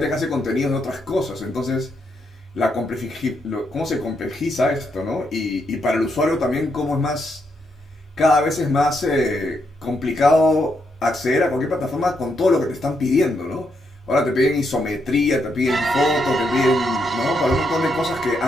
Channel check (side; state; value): both; normal; correlation 0.79